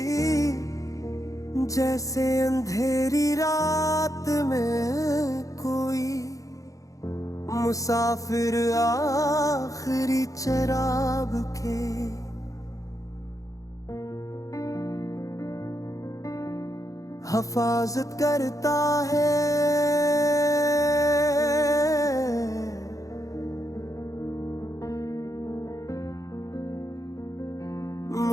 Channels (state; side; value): late; right; 0.16 ms